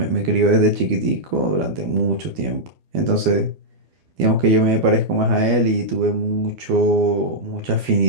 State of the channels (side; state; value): left; late; 12 ms